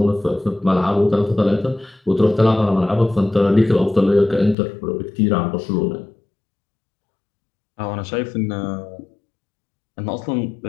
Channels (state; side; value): drops out; right; at 4.5 s